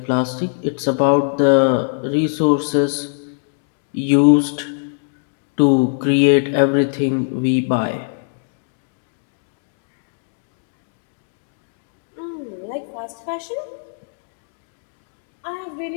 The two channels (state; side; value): silent; right; digital silence